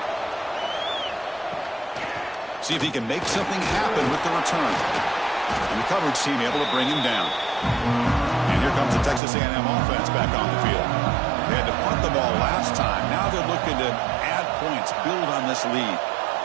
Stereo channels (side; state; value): left; drops out; at 9.2 s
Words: See if he can make something happen with the return. And the coverage team able to bring him down. And here comes the Texas A&M offense back on the field. They had to punt the ball last time. Now they're looking to add points, build on this lead.